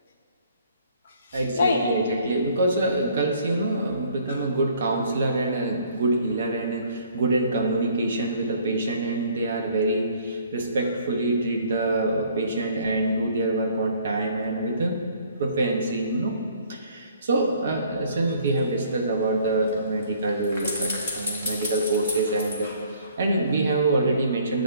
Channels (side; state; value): both; inverted; correlation -0.59